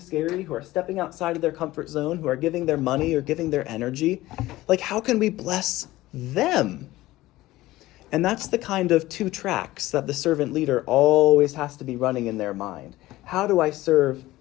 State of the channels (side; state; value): right; quieter; 17.3 dB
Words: who are stepping outside of their comfort zone, who are giving their money or giving their energy. Like, how can we bless them? And that's the kind of two tracks that the servant leader always has to be running in their mind. How do I serve